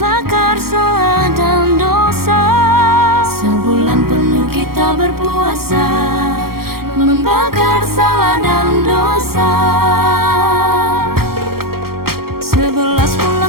salah dan dosa. Sebulan penuh kita berpuasa, membakar salah dan dosa. 11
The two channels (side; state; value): left; late; 0.94 ms